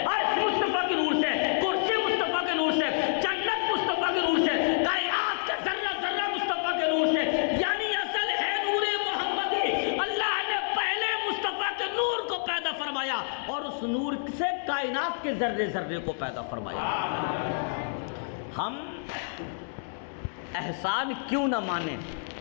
عرش مصطفیٰ کے نور سے، کرسی مصطفیٰ کے نور سے، جنت مصطفیٰ کے نور سے، کائنات کا ذرہ ذرہ مصطفیٰ کے نور سے، یعنی اصل ہے نور محمدی۔ اللہ نے پہلے مصطفیٰ کے نور کو پیدا فرمایا اور اس نور سے کائنات کے ذرے ذرے کو پیدا فرمایا۔ ہم احسان کیوں نہ مانیں،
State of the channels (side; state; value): right; silent; digital silence